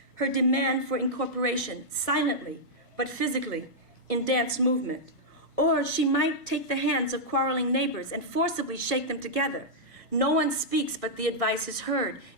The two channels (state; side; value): normal; both; correlation -0.08